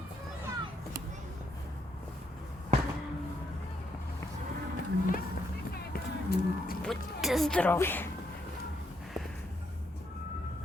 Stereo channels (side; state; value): both; normal; correlation 0.76